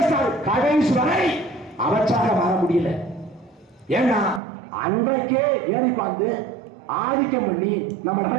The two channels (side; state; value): left; drops out; at 4.4 s